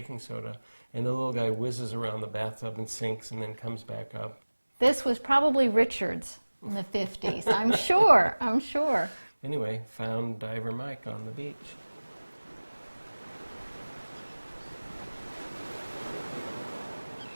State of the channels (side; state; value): both; inverted; correlation -1.00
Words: soda, and the little guy whizzes around the bathtub and sinks and then comes back up. This was probably Richard's in the 50s, I'm sure. Anyway, found Diver Mike on the beach.